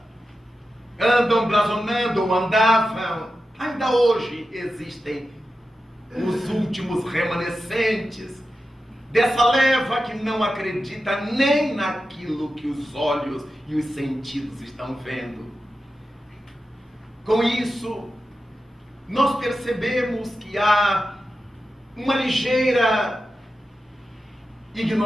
andam blasonando ou andavam, ainda hoje existem os últimos remanescentes dessa leva que não acredita nem naquilo que os olhos e os sentidos estão vendo. Com isso, nós percebemos que há uma ligeira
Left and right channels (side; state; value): both; normal; correlation 0.91